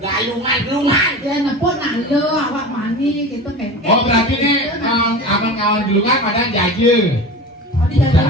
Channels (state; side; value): normal; both; correlation 0.32